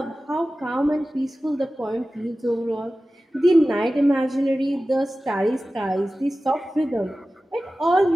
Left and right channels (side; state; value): both; normal; correlation 0.95